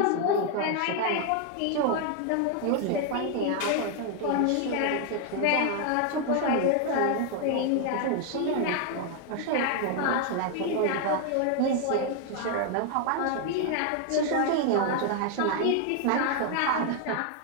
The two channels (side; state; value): both; different; correlation 0.00